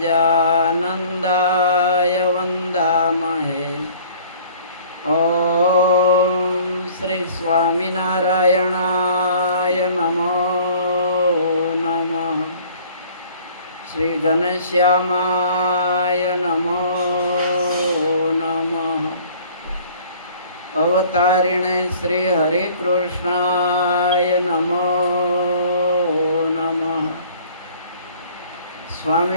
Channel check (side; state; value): both; inverted; correlation -0.52